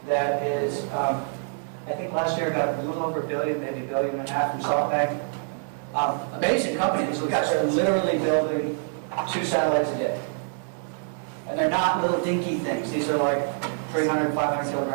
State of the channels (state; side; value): silent; left; digital silence